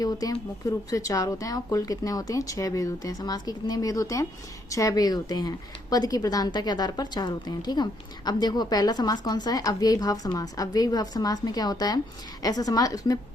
होते हैं? मुख्य रूप से 4 होते हैं और कुल कितने होते हैं? 6 भेद होते हैं। समास के कितने भेद होते हैं? 6 भेद होते हैं। पद की प्रधानता के आधार पर 4 होते हैं। ठीक है, अब देखो पहला समास कौन सा है? अव्ययी भाव समास। अव्ययी भाव समास में क्या होता है? ऐसा समास, उसमें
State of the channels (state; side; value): normal; both; correlation 0.72